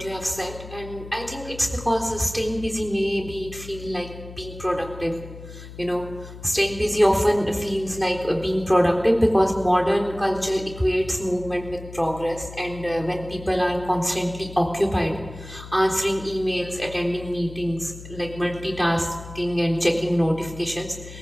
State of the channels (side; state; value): left; noise; hum, 14 dB below the sound